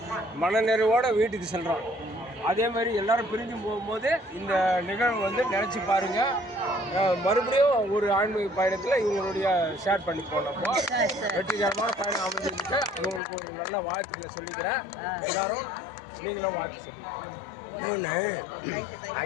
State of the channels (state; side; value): drops out; right; at 13.2 s